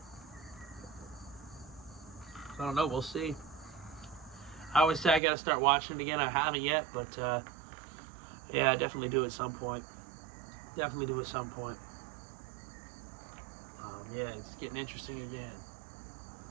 I don't know. We'll see. I always say I got to start watching it again. I haven't yet, but yeah, I definitely do at some point. Definitely do at some point. Yeah, it's getting interesting again.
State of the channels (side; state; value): left; drops out; at 5.2 s